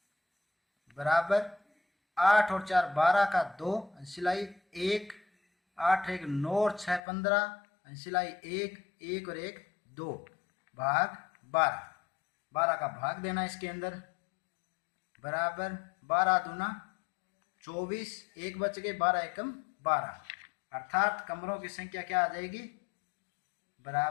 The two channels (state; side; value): drops out; right; at 7.0 s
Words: बराबर 8 और 4 12 का 2 सिलाई 1, 8 1 9 और 6 15 सिलाई 1 1 और 1 2 भाग 12 का भाग देना इसके अंदर बराबर 12 दूना 24, 1 बच गए 12 एकम 12, अर्थात कमरों की संख्या क्या आ जाएगी